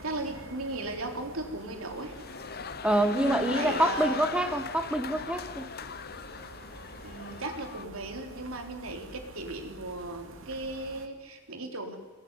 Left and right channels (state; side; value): normal; both; correlation 0.54